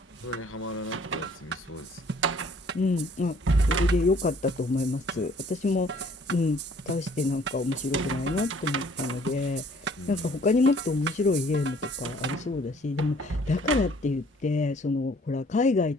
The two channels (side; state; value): both; normal; correlation 0.58